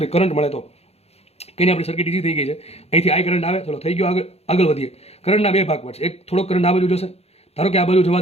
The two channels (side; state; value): right; late; 0.30 ms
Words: કરંટ મળે તો. કંઈ આપણી સર્કિટ ઈઝી થઈ ગઈ છે. અહીંથી આ કરંટ આવે. ચલો થઈ ગયો. આગળ વધીએ. કરંટના 2 ભાગ પડશે. એક થોડોક કરંટ આ બાજુ જશે. ધારો કે આ બાજુ જવા